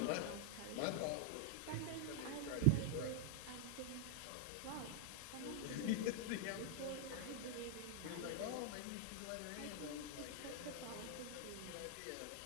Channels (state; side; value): different; both; correlation 0.00